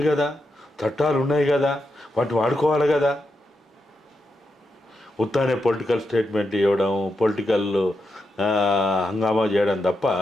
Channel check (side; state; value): both; normal; correlation 0.85